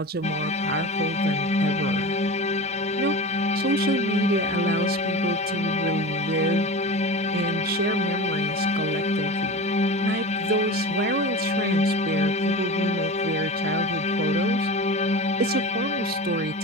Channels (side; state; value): both; normal; correlation 0.30